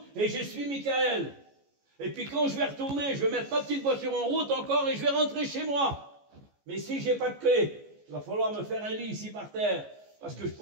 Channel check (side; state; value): left; late; 14 ms